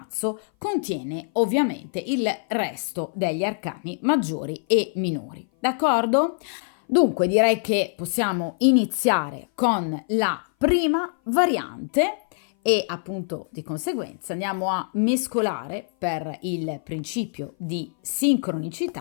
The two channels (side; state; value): right; silent; 58 dB below the other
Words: contiene ovviamente il resto degli arcani maggiori e minori, d'accordo? Dunque direi che possiamo iniziare con la prima variante e appunto di conseguenza andiamo a mescolare per il principio di